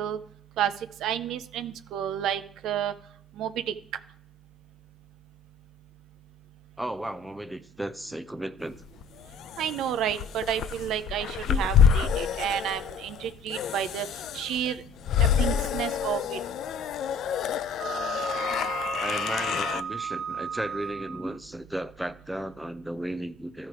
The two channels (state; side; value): normal; both; correlation 0.51